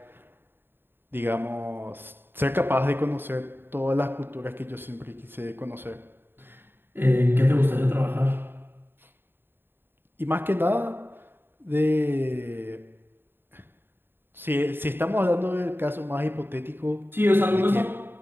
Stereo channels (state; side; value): late; left; 0.10 ms